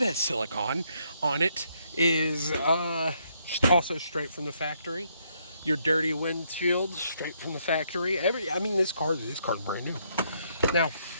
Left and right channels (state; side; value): inverted; both; correlation -0.73